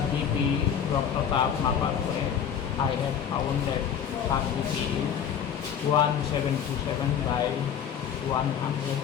বিপি রক্তচাপ মাপার করে I have found that তার বিপি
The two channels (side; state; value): right; quieter; 8.3 dB